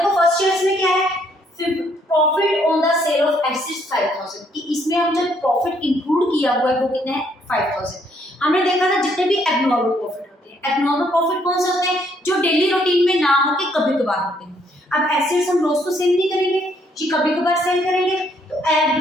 फर्स्ट ईयर में क्या है, profit on the sale of assets 5,000, कि इसमें हम जो प्रॉफिट इंक्लूड किया हुआ है वो कितना है, 5,000। हमने देखा था जितने भी एबनॉर्मल प्रॉफिट होते हैं, एबनॉर्मल प्रॉफिट कौन से होते हैं, जो डेली रूटीन में ना हो के कभी कभार होते हैं। अब एसेट्स हम रोज तो सेल नहीं करेंगे, जी कभी कभार सेल करेंगे, तो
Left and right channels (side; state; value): both; normal; correlation 0.69